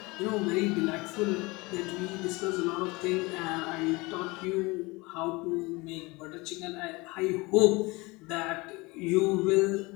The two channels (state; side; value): quieter; right; 24.1 dB